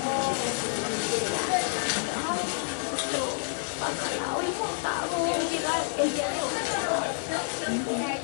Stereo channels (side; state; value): right; silent; digital silence